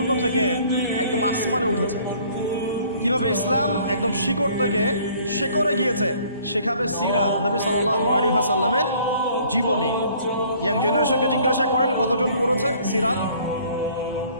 থেকে একদম আসমানে উঠেছে, কিভাবে ইসলাম একদম শিকড় থেকে শেকড়ে গিয়েছে, শেখাবে সিরাত, নবী সাল্লাল্লাহু আলাইহি ওয়াসাল্লামের জীবনী। ইয়াং জেনারেশনকে জিজ্ঞাসা করেন কতজন পড়েছে সিরাত।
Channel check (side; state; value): both; inverted; correlation -0.57